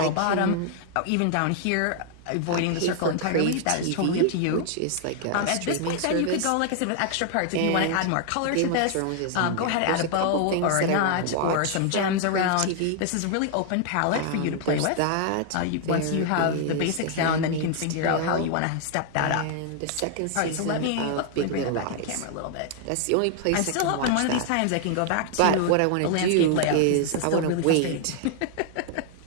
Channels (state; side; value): different; both; correlation 0.00